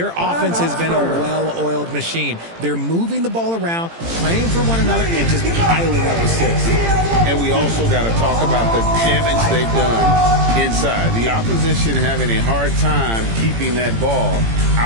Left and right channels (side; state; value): left; late; 18 ms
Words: offense has been a well-oiled machine. They're moving the ball around, playing for one another, and just piling up assists. And we also got to talk about the damage they've done inside. The opposition having a hard time keeping that ball